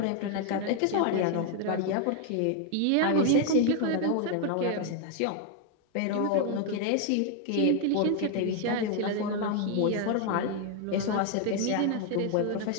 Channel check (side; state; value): both; different; correlation 0.00